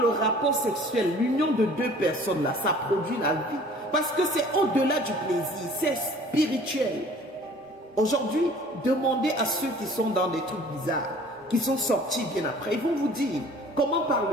rapport sexuel, l'union de deux personnes là, ça produit la vie. Parce que c'est au-delà du plaisir, c'est spirituel. Aujourd'hui, demandez à ceux qui sont dans des trucs bizarres, qui sont sortis bien après, ils vont vous dire comment par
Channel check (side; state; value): both; normal; correlation 0.50